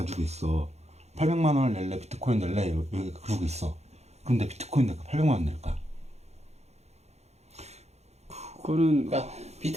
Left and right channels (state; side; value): late; left; 0.31 ms